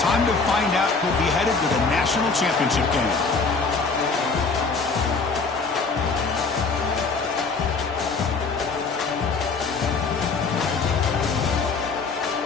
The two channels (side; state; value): right; quieter; 4.4 dB